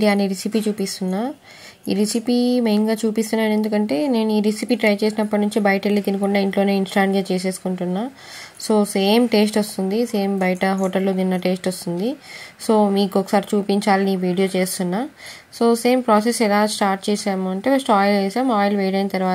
recipe చూపిస్తున్నా. ఈ రెసిపీ మెయిన్గా చూపిస్తున్నాను ఎందుకంటే నేను ఈ రెసిపీ ట్రై చేసినప్పటి నుంచి బయట వెళ్ళి తినకుండా ఇంట్లోనే ఇన్స్టాంట్గా చేసేసుకుంటున్నా. సో సేమ్ టేస్ట్ వస్తుంది, సేమ్ బయట హోటల్లో తిన్న టేస్ట్ వస్తుంది. సో మీకు ఒకసారి చూపించాలని ఈ వీడియో చేస్తున్నా. సో సేమ్ ప్రాసెస్ ఎలా స్టార్ట్ చేసాము అంటే ఫస్ట్ ఆయిల్ వేసాం. ఆయిల్ వేడైన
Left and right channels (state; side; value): identical; both; correlation 1.00